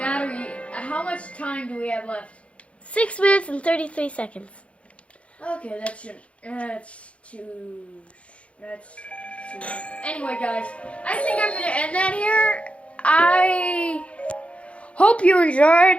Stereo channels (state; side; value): late; right; 0.062 ms